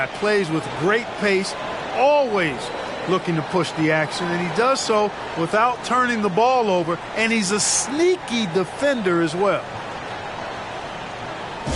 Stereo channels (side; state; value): both; identical; correlation 1.00